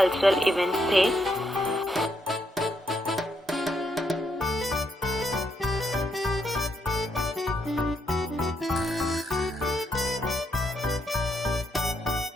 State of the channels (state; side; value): normal; both; correlation 0.77